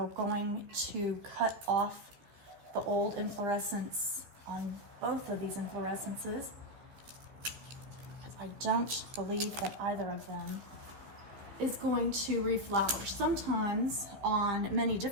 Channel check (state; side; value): late; left; 15 ms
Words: going to cut off the old inflorescence on both of these inflorescences because I don't believe that either of them is going to reflower. Sometimes on many